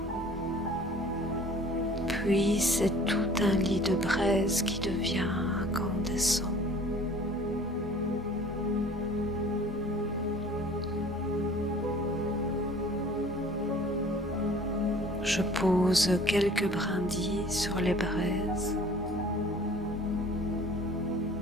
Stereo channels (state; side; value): normal; both; correlation 0.49